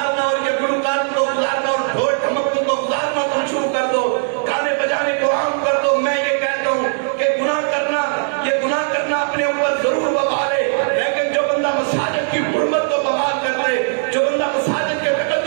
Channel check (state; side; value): silent; left; digital silence